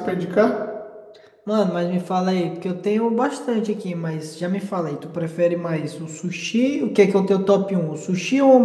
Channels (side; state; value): both; identical; correlation 1.00